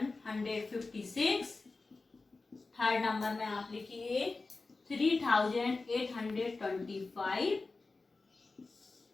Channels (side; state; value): right; quieter; 3.7 dB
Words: थर्ड नंबर में आप लिखिए 3825,